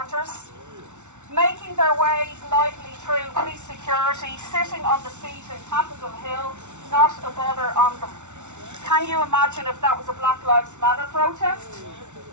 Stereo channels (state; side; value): late; left; 0.84 ms